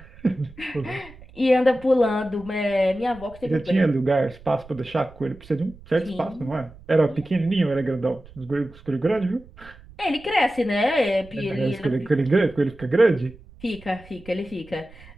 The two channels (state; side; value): noise; right; rumble, 21 dB below the sound